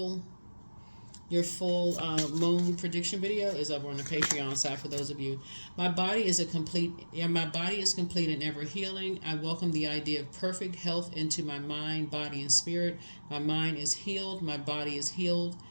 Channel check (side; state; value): both; inverted; correlation -1.00